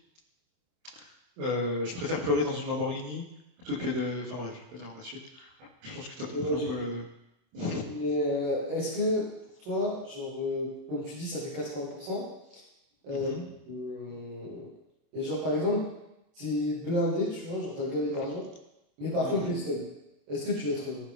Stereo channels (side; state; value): left; late; 27 ms